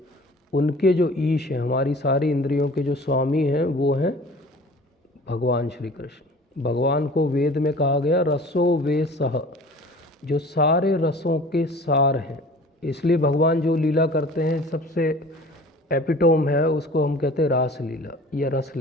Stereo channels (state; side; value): normal; both; correlation 0.45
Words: उनके जो ईश हैं, हमारी सारी इंद्रियों के जो स्वामी हैं, वो हैं भगवान श्री कृष्ण। भगवान को वेद में कहा गया रसो वे सह, जो सारे रसों के सार हैं। इसलिए भगवान जो लीला करते हैं, सबसे एपिटोम है उसको हम कहते हैं रास लीला या रस